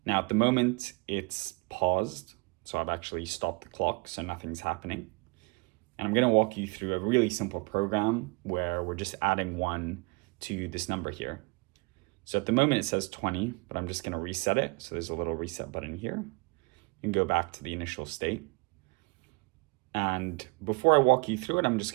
Now at the moment it's paused, so I've actually stopped the clock so nothing's happening. And I'm going to walk you through a really simple program where we're just adding 1 to this number here. So at the moment it says 20, but I'm just going to reset it. So there's a little reset button here. You can go back to the initial state. And before I walk you through it, I'm just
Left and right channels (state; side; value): quieter; left; 29.6 dB